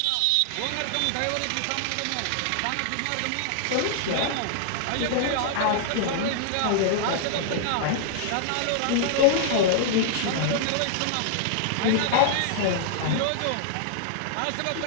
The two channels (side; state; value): both; different; correlation -0.01